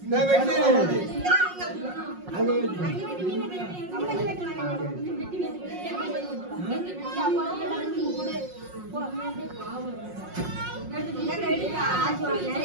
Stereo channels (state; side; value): late; left; 5.5 ms